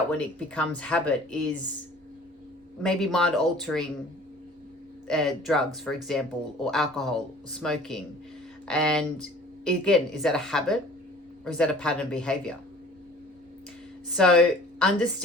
when it becomes habit is maybe mind altering drugs, for example, or alcohol, smoking. And again, is that a habit or is that a pattern behavior? So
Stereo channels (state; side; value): normal; both; correlation 0.49